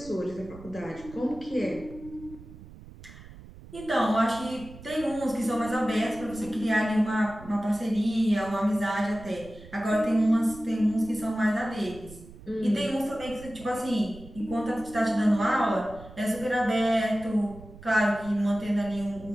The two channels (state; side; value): noise; right; rumble, 18 dB below the sound